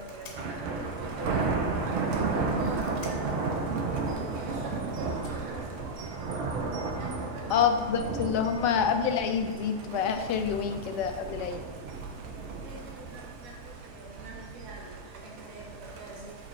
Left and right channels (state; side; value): late; left; 5.3 ms